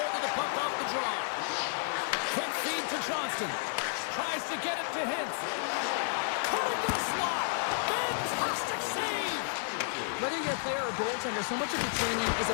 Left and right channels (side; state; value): right; silent; 57 dB below the other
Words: of the puck off the draw. Quick feed to Johnston. Tries to get it to Hintz. Cutting the slot. Fantastic save. Whether you're a player or goaltender, so much of the training is